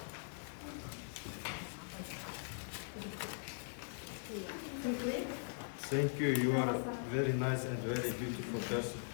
Quickly. Thank you. You are a very nice and very beautiful person.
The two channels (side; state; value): right; silent; digital silence